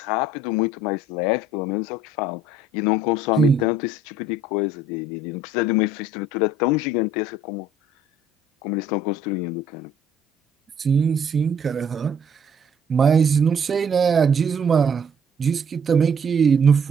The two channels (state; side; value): normal; both; correlation 0.59